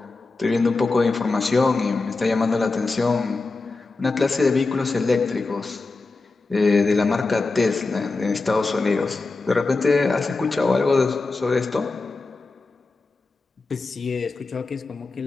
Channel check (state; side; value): quieter; right; 3.7 dB